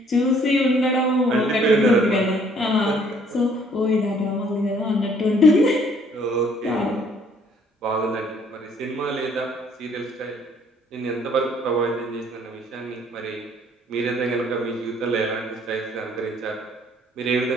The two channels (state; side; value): normal; both; correlation 0.61